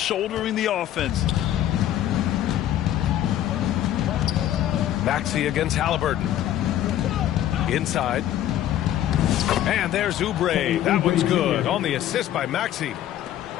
the offense. Maxey against Halliburton. Inside. And there's Oubre. That one's good on the assist by Maxey.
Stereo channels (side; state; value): right; quieter; 12.1 dB